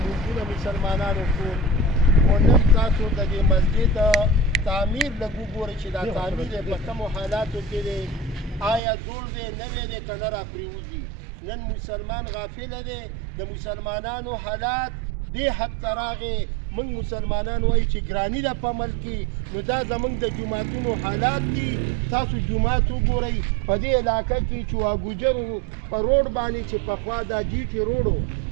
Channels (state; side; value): drops out; left; at 8.8 s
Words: موږ مسلمانانو ټول او نن تاسو د دې مسجد تعمیر لږ وګورئ چې دا تعمیر په کومو حالاتو کې دی، آیا جوړ دی نوی دی که نه راپرېوځي. نن مسلمان غافله دی، د مسلمانانو حالات دې حد ته راغې. موږ مسلمانان وایو چې ګراني ده په ملک کې، نو دا زموږ د جوماتونو حالات دي. تاسو جومات وګورئ په دې علاقه کې چواګوجرو په روډ باندې چې پخوا دا جي ټي روډ